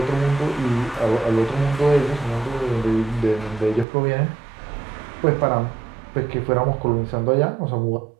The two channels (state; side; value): drops out; left; at 3.9 s